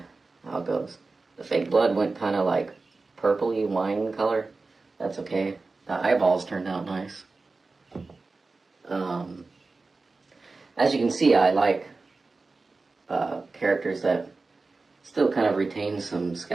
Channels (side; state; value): left; quieter; 3.7 dB